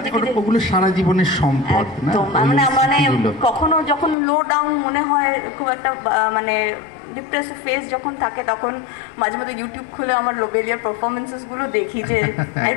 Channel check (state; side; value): drops out; right; at 4.2 s